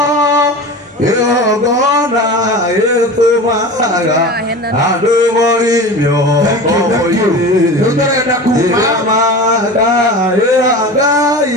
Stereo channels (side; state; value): both; normal; correlation 0.32